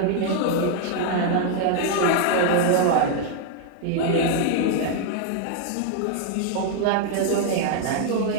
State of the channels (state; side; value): different; both; correlation 0.00